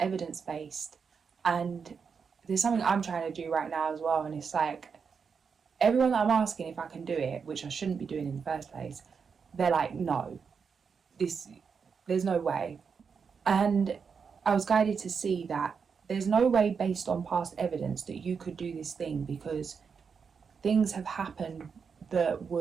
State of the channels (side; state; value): left; quieter; 6.0 dB